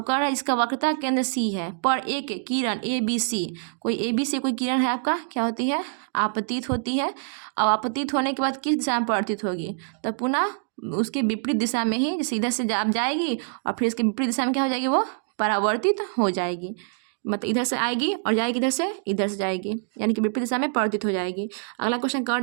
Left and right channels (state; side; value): silent; left; digital silence